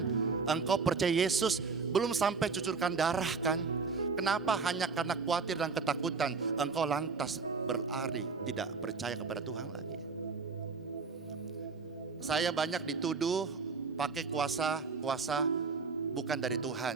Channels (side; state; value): left; quieter; 4.8 dB